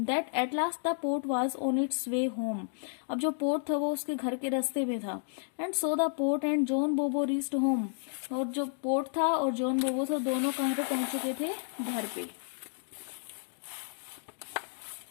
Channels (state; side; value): silent; right; digital silence